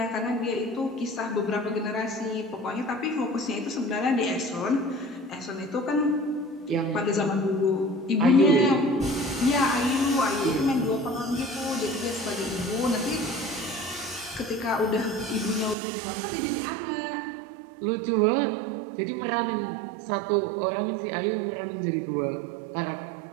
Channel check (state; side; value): drops out; left; at 15.8 s